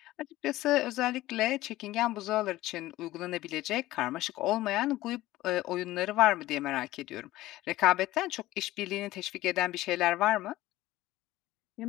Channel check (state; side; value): quieter; right; 16.5 dB